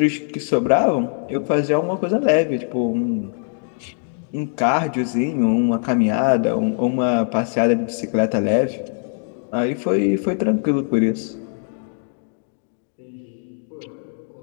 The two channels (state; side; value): silent; right; 58 dB below the other